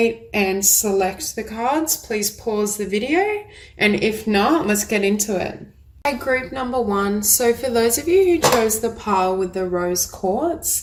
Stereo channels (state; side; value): identical; both; correlation 1.00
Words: and select the cards, please pause the video. And if not, let's get into it. Okay, group number 1. So for those of you who chose the pile with the rose